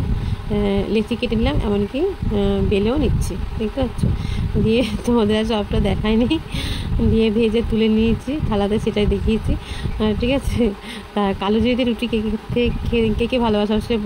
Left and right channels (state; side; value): identical; both; correlation 1.00